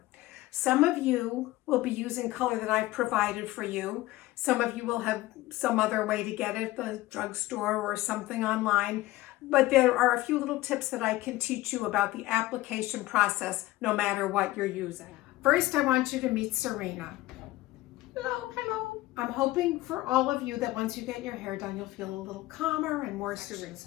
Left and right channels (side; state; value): right; quieter; 17.9 dB